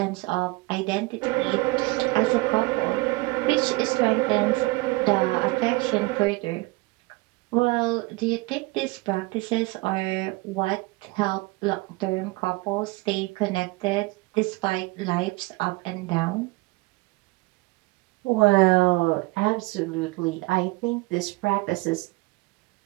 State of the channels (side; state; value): left; quieter; 23.8 dB